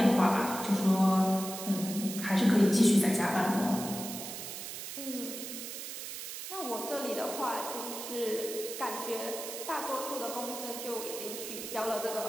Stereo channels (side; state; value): right; noise; hiss, 8 dB below the sound